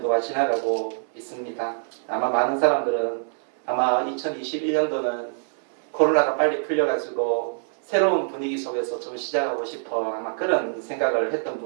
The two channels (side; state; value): left; silent; 60 dB below the other